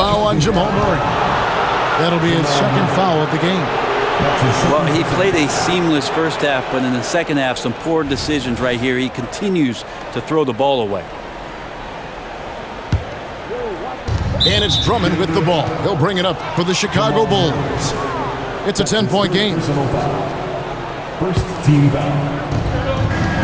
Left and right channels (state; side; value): identical; both; correlation 1.00